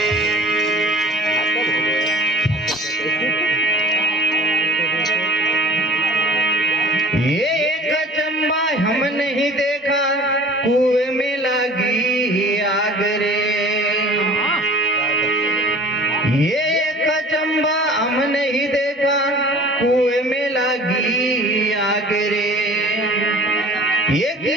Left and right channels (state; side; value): normal; both; correlation 0.45